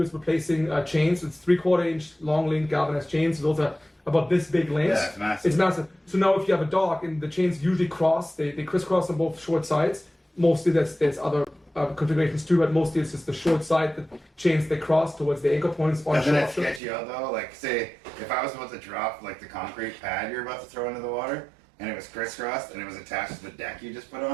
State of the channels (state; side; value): drops out; left; at 16.8 s